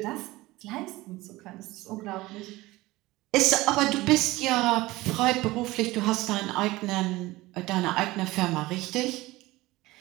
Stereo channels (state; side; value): quieter; left; 19.4 dB